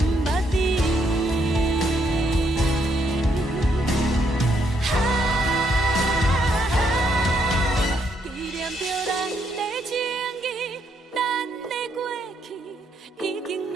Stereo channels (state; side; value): normal; both; correlation 0.75